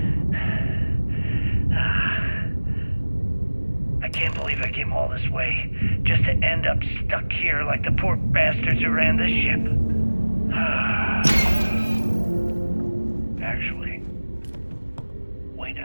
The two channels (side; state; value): both; inverted; correlation -1.00